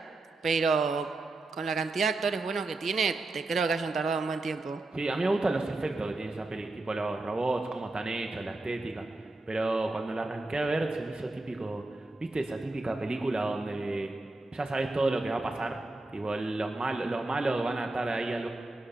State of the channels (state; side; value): quieter; left; 3.0 dB